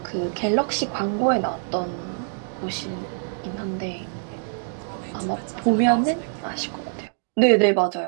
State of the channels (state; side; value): silent; left; digital silence